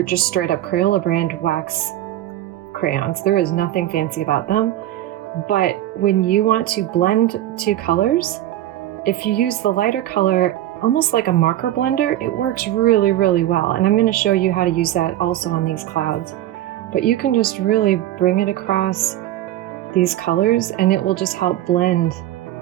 just straight up Crayola brand wax crayons. There is nothing fancy about them. But when you want to blend two colors, if you use the lighter color, almost like a marker blender, it works really, really well. And I'm going to show you how to use that also on these clouds. But you can just really bring it across these colors, and it will just help blend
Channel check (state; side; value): quieter; left; 13.6 dB